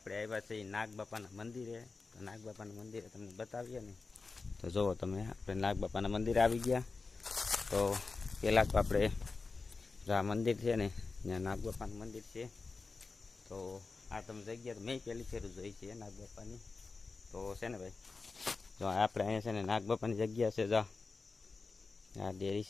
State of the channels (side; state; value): right; quieter; 4.1 dB